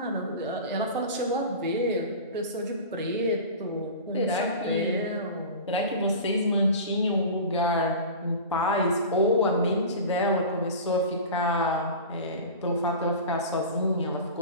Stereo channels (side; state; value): both; inverted; correlation -0.33